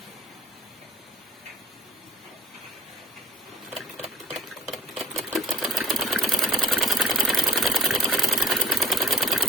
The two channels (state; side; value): normal; both; correlation 0.49